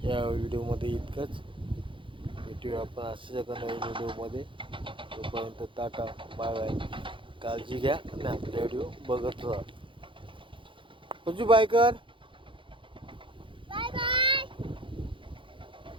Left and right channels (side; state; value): left; late; 0.25 ms